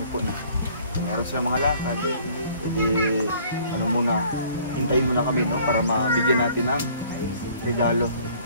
po na kung meron sila mga lakad, pwede, ano muna, hintayin muna kami, no, para mabigyan natin ng regalo,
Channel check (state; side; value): inverted; both; correlation -0.56